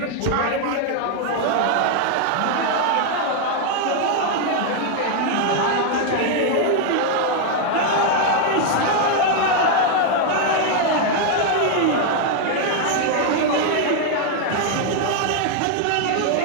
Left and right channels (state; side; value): different; both; correlation 0.00